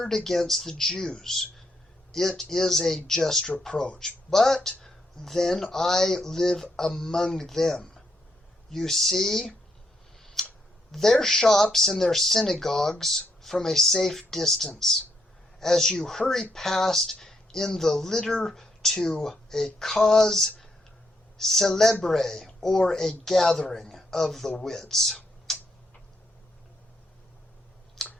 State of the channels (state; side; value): normal; both; correlation 0.77